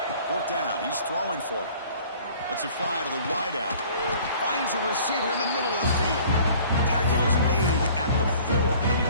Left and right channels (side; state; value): both; inverted; correlation -0.51